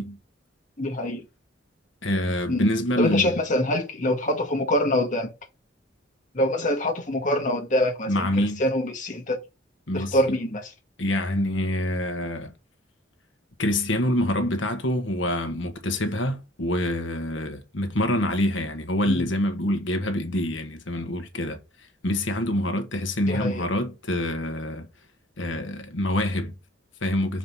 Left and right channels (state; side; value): normal; both; correlation 0.47